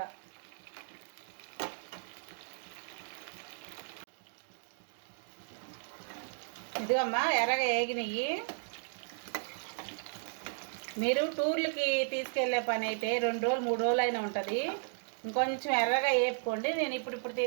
ఇదిగమ్మా ఎర్రగా వేగినవి. మీరు టూర్లకి తీసుకెళ్ళే పని అయితే 2 రోజులు 3 రోజులు అయినా ఉంటుంది. ఇంకొంచెం ఎర్రగా వేపుకోండి. నేను ఇప్పుడు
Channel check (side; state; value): left; silent; digital silence